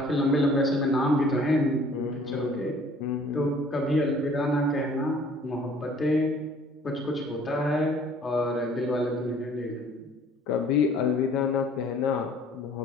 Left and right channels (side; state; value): both; normal; correlation 0.54